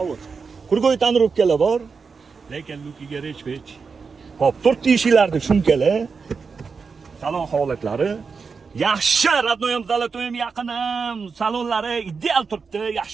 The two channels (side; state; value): left; quieter; 5.2 dB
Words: Kurgoy tonirovkalar bor, lekin lukiga rech-pech. Hop, 4 eshiklarni shumkalar. Salon holatlari yaxshi, radnoyam zalatoyim yaqinim. Salonlari ideal turibdi,